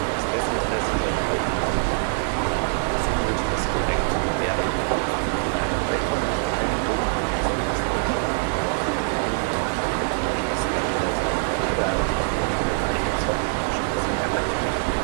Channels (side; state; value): left; silent; digital silence